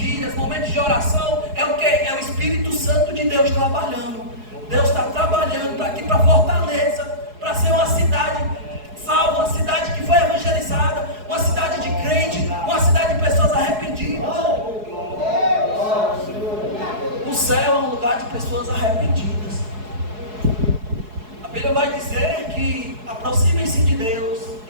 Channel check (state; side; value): late; left; 4.7 ms